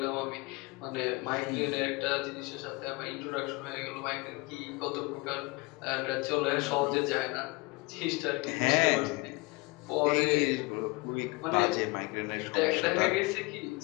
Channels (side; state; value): right; quieter; 25.6 dB